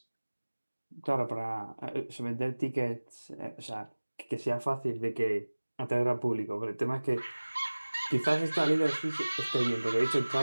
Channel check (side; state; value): both; inverted; correlation -1.00